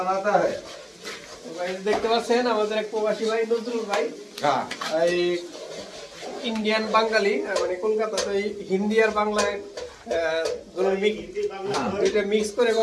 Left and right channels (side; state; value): both; identical; correlation 1.00